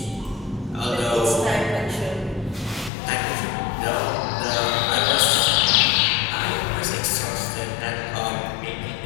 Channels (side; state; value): right; drops out; at 2.9 s